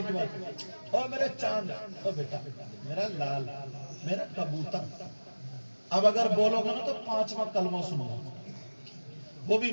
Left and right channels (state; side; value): inverted; both; correlation -1.00